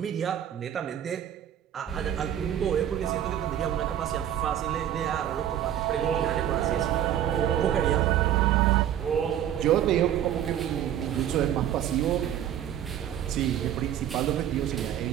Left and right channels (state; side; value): quieter; left; 10.7 dB